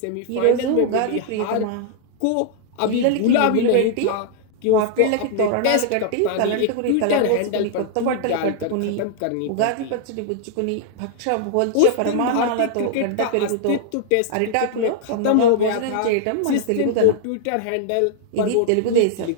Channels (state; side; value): different; both; correlation -0.01